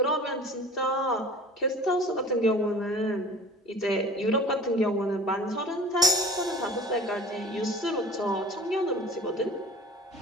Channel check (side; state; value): both; normal; correlation 0.42